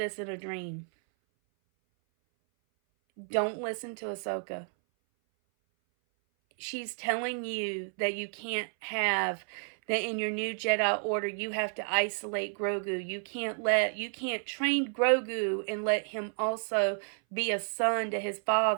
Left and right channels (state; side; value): silent; left; 57 dB below the other